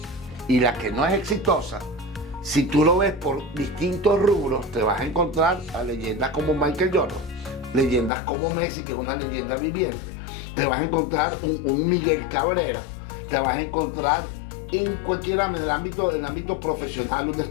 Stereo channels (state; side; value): drops out; right; at 8.1 s